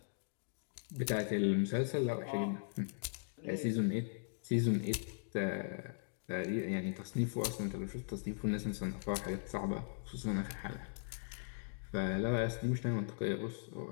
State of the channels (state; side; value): silent; right; digital silence